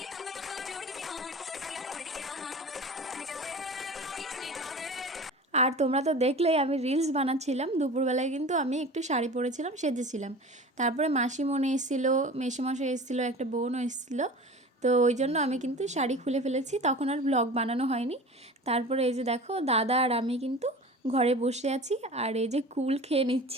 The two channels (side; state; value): both; normal; correlation 0.37